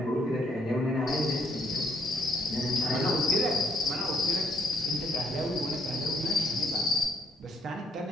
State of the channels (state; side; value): normal; both; correlation 0.69